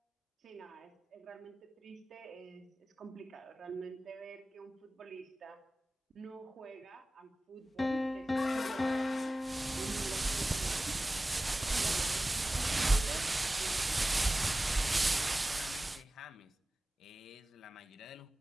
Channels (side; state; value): both; normal; correlation 0.97